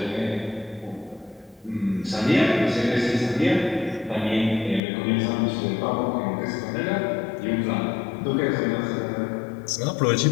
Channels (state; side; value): drops out; right; at 4.8 s